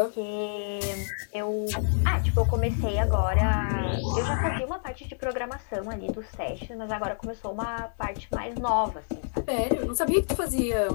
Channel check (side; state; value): right; silent; 59 dB below the other